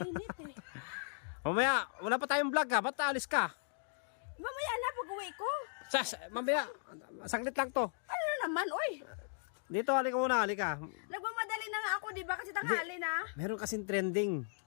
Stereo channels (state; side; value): silent; right; digital silence